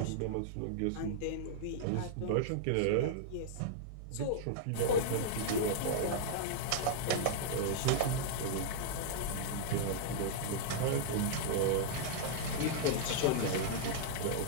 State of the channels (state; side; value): different; both; correlation -0.02